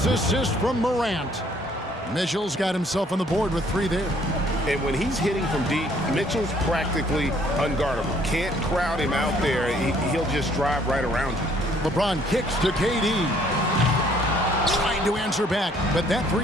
assist from Morant. Mitchell's got himself on the board with 3 there. And when he's hitting from deep, Mitchell's practically unguardable. Can't crowd him out there. He'll just drive right around you. LeBron kicks to KD. Trying to answer back, but that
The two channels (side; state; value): both; normal; correlation 0.62